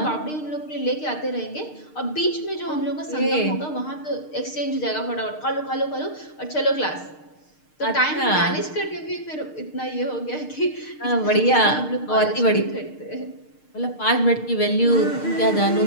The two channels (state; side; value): late; right; 6.6 ms